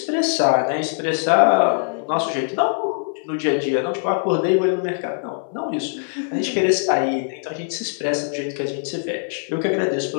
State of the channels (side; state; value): right; silent; 59 dB below the other